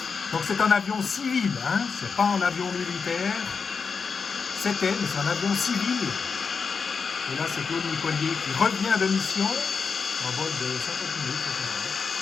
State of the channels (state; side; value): quieter; right; 5.4 dB